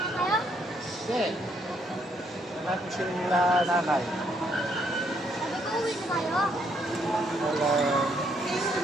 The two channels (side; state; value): both; normal; correlation 0.71